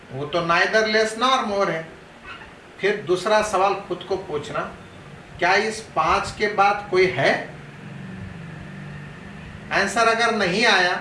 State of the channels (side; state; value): both; identical; correlation 1.00